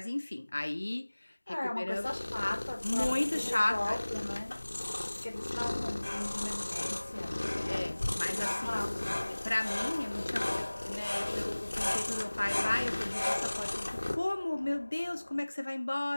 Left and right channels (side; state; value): both; inverted; correlation -1.00